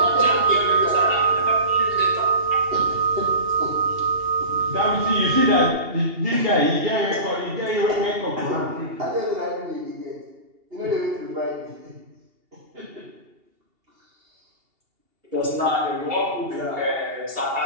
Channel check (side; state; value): left; late; 2.8 ms